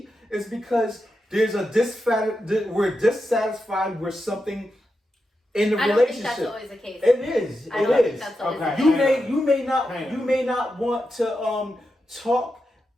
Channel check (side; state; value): both; normal; correlation 0.88